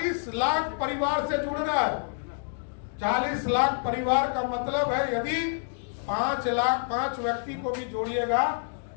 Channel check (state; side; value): silent; right; digital silence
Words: लाख परिवार से जुड़ना है। 40 लाख परिवार का मतलब है यदि 5 व्यक्ति को भी जोड़िएगा